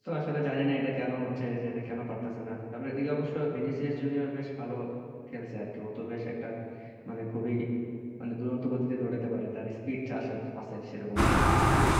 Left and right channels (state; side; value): identical; both; correlation 1.00